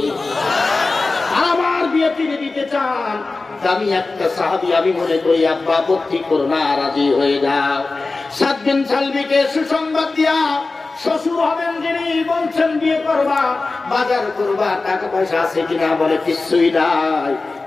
আমার বিয়ে তিনি দিতে চান। আমি একটা সাহাবী, আমি মনে করি আব্বা আপত্তি করো না, রাজি হয়ে যাও। 7 বিন সালবিকে সুসংবাদ দিয়া শ্বশুর হবেন যিনি বলছেন, বিয়ে করবা, বাজার করবা, টাকা পয়সা আছে কিনা? বলে, কিছুই নাই,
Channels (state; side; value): quieter; right; 3.6 dB